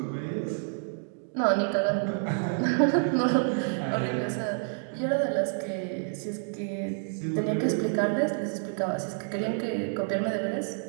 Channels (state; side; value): silent; left; 59 dB below the other